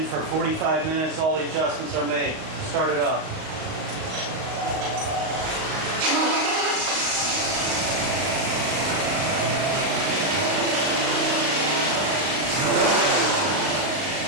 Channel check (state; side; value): late; left; 38 ms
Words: for 45 minutes. All the adjustments are made. Start it up.